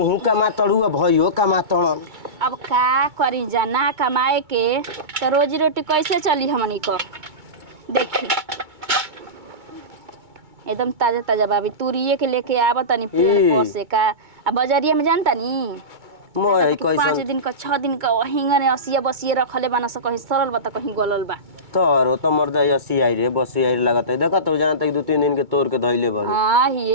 कमा तड़ू अब भइयो कमा तड़न। अब का करी जाना कमाए के तो रोजी रोटी कैसे चली हमनी को। देखी एकदम ताजा ताजा बाबी तुरिये के लेके आवत नहीं पेड़ पर से का। अब बाजारिया में जानता नहीं मोय 5 दिन का 6 दिन का हिंगने असिया बसिए रखले बना स कहीं सरल बता कहीं गलल बा। तोरो तो मर्द ऐसी आई रे बसी आई लगत है देखत तो जानत 2-3 दिन के तोड़ के धइले बड़। हां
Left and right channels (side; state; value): left; late; 2.2 ms